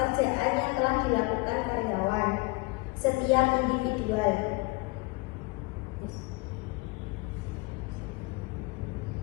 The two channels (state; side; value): quieter; right; 25.4 dB